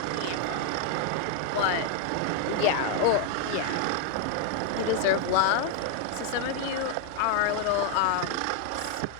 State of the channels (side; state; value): both; different; correlation 0.00